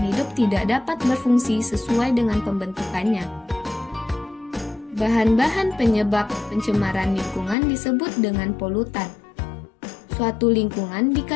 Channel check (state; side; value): drops out; right; at 7.6 s